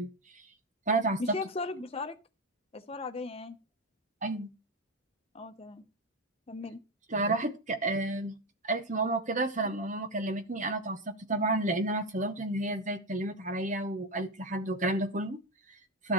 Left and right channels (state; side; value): normal; both; correlation 0.13